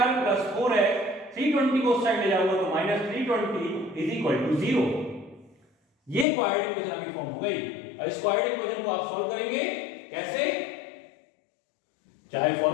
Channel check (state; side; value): drops out; right; at 6.2 s